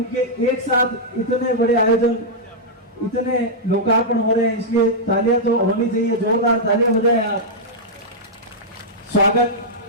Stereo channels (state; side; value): normal; both; correlation -0.08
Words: एक साथ इतने बड़े आयोजन, इतने लोकार्पण हो रहे हैं, इसलिए तालियां तो होनी चाहिए, जोरदार तालियां बजाएं आप। स्वागत